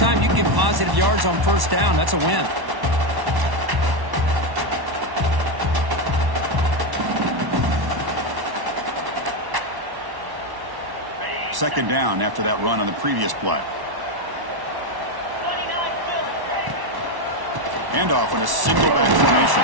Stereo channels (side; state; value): left; late; 1.1 ms